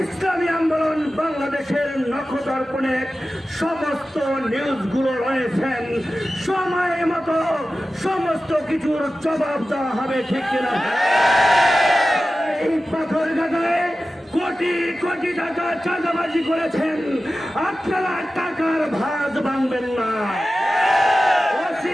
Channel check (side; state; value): both; normal; correlation 0.95